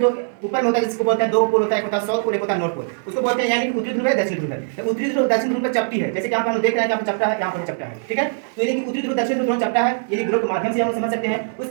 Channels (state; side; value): silent; left; digital silence